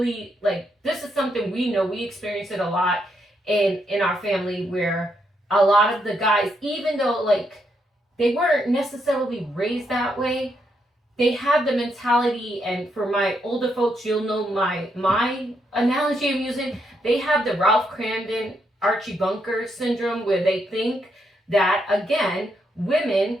like, this is something we know. We experience it a lot in our family, where a lot of the guys, even though like they weren't necessarily raised that way, they have the mentality. And for my older folks, you'll know my analogy I'm using. They have the Ralph Cramden, Archie Bunker syndrome, where they think that, again, women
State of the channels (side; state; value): both; normal; correlation 0.78